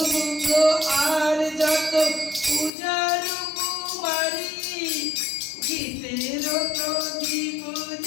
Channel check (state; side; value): drops out; right; at 2.7 s